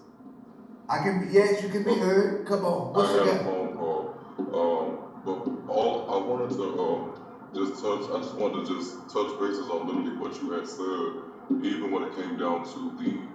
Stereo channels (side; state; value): both; identical; correlation 1.00